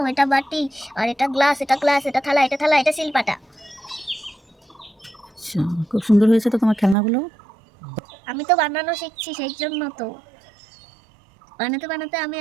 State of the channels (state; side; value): drops out; left; at 7.0 s